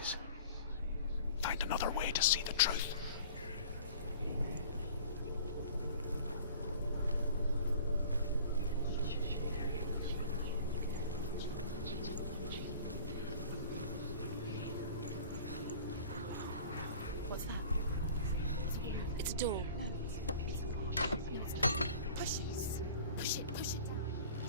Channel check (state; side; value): inverted; both; correlation -0.45